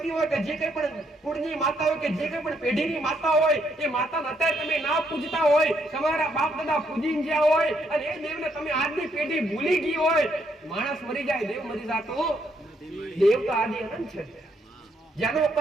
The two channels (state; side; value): normal; both; correlation 0.74